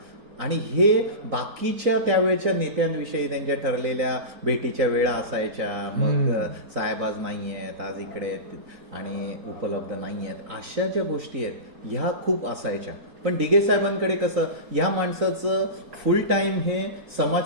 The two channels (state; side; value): late; left; 3.9 ms